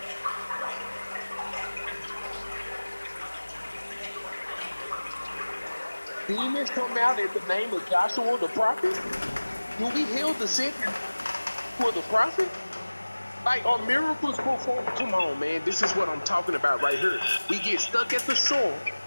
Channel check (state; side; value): inverted; both; correlation -1.00